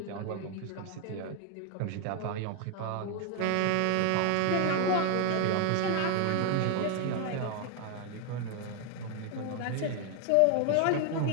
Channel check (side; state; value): both; different; correlation 0.00